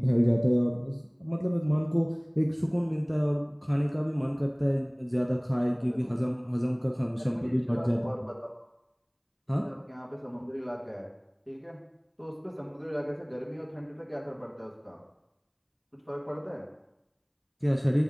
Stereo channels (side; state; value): both; identical; correlation 1.00